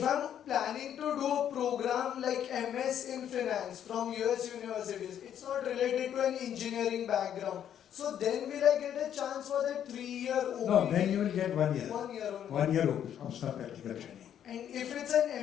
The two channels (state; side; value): quieter; right; 9.8 dB